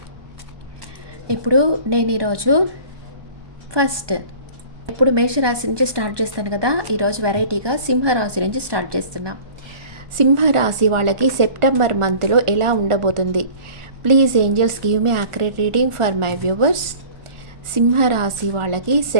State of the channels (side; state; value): left; late; 1.2 ms